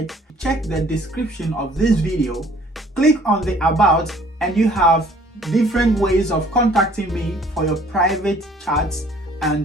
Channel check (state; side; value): normal; both; correlation 0.57